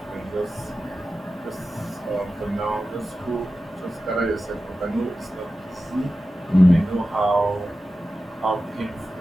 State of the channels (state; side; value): normal; both; correlation 0.93